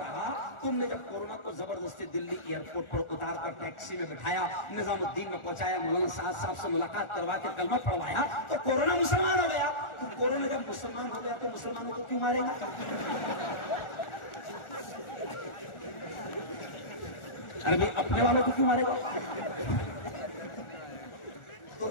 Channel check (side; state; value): right; late; 1.4 ms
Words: तुमने जब कोरोना को जबरदस्ती दिल्ली एयरपोर्ट पर उतार कर टैक्सी में बिठाया, निजामुद्दीन में पहुंचाया, मौलाना साहब से मुलाकात करवा के कलमा पढ़वाया, तो कोरोना मुसलमान हो गया। तो कोरोना जब मुसलमान हो गया तो मुसलमानों को क्यों मारेगा? अरे भाई अपने वालों को क्यों मारेगा? तो